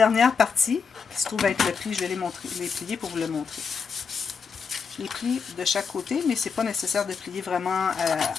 partie, qui se trouve être le pli, je vais les plier pour vous le montrer. Je les plie de chaque côté, mais c'est pas nécessaire de plier vraiment à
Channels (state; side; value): quieter; right; 5.8 dB